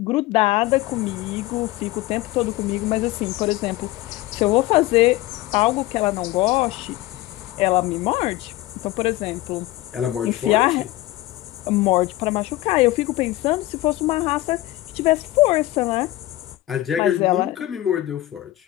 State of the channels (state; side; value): quieter; right; 16.9 dB